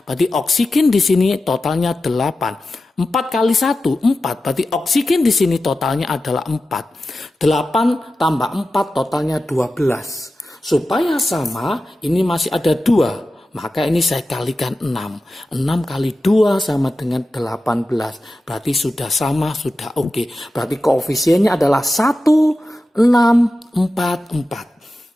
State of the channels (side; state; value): both; normal; correlation 0.93